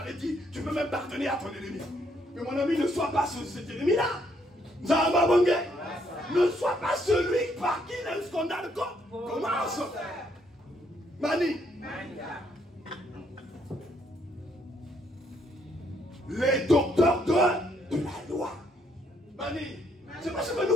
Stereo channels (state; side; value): normal; both; correlation 0.71